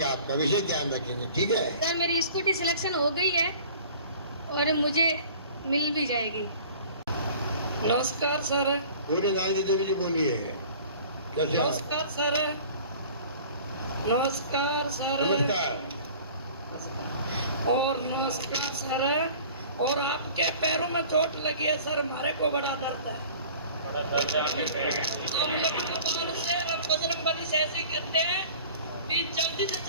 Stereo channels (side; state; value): both; inverted; correlation -0.46